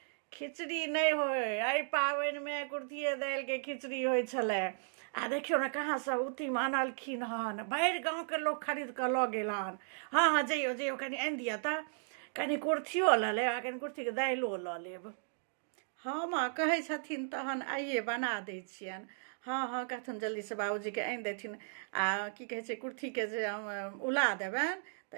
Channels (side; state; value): left; silent; digital silence